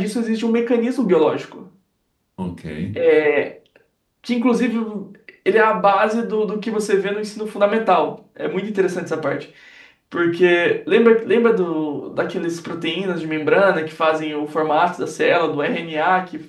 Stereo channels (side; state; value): both; identical; correlation 1.00